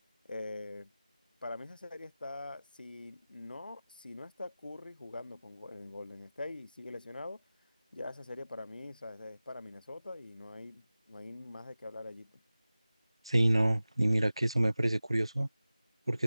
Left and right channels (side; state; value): both; inverted; correlation -0.97